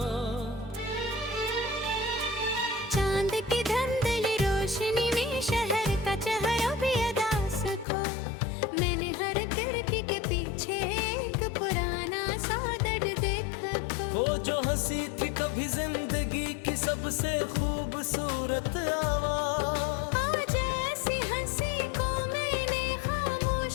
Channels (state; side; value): drops out; right; at 7.9 s